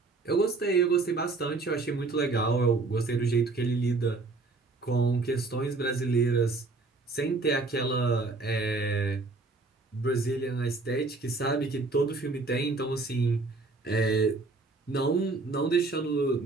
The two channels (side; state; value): left; quieter; 3.6 dB